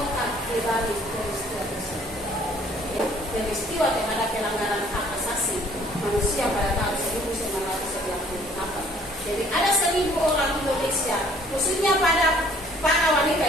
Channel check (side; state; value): both; normal; correlation 0.58